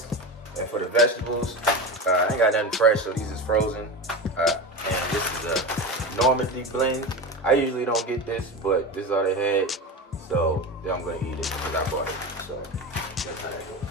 And for the vegetables, I ain't got nothing fresh, so these is frozen. And this is a Normandy blend. I usually don't get this, but this is all they had, so I'm going to eat it because I bought it. So that's how that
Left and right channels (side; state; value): both; normal; correlation 0.24